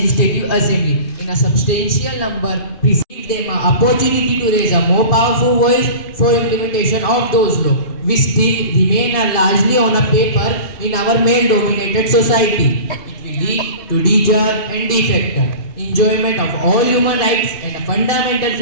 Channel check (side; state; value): right; late; 2.7 ms